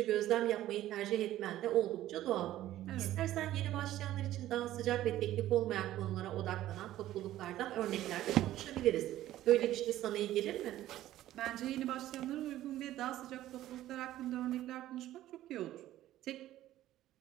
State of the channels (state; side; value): quieter; left; 14.0 dB